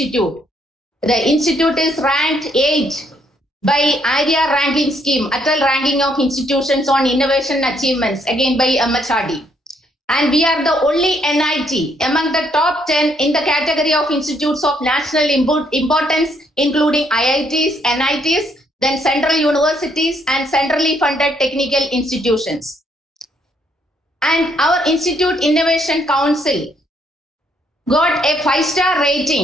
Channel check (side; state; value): both; normal; correlation 0.71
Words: institute is ranked 8 by ARIA ranking scheme, Atal ranking of institutions on innovation achievements, again by MHRD. And we are the only NIT among the top 10 in the category of institutes of national importance, including IITs, NITs, then central universities and centrally funded technical institutions. And our Institute Innovation Council got a 5-star